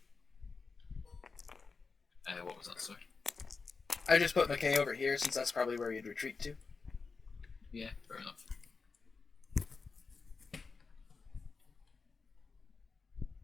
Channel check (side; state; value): right; quieter; 4.6 dB